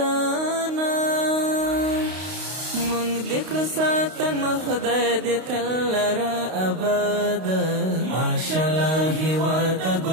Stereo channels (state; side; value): late; left; 32 ms